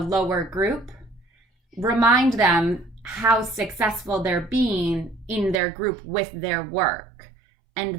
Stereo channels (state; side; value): drops out; left; at 5.6 s